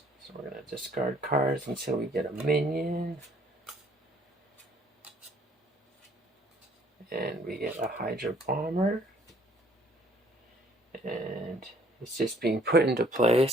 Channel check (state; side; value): normal; both; correlation 0.60